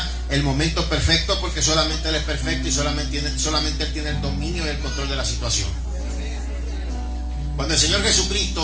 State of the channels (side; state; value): both; identical; correlation 1.00